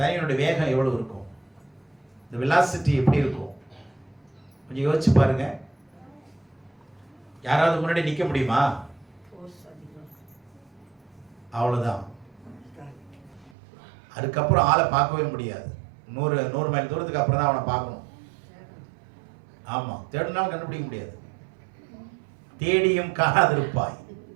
வேகம் எவ்வளவு இருக்கும்? இந்த வெலாசிட்டி எப்படி இருக்கும்? கொஞ்சம் யோசிச்சு பாருங்க. யாராவது முன்னாடி நிக்க முடியுமா? அவ்வளவுதான். அதுக்கப்புறம் ஆளை பார்க்கவே முடியாது. 100 மைல் தூரத்துக்கு அப்புறம் தான் அவனை பார்க்கணும். ஆமா, தேடினாலும் கண்டுபிடிக்க முடியாது. தேடியும் காணாதிருப்பாய்.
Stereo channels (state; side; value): drops out; left; at 13.5 s